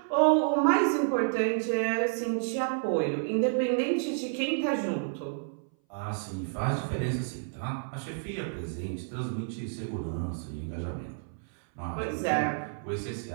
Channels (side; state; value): left; silent; 58 dB below the other